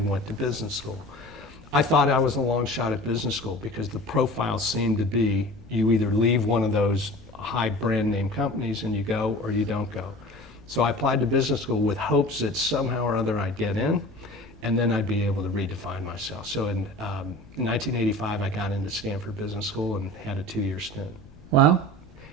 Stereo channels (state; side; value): noise; left; rumble, 23 dB below the sound